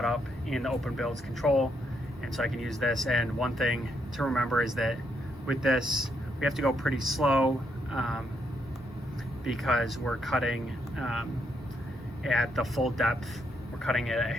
up in the Openbuilds control, and so I can use this. And one thing to remember is that with this we have to go pretty slow because we're cutting at the full depth. We're cutting it at a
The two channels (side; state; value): both; normal; correlation 0.77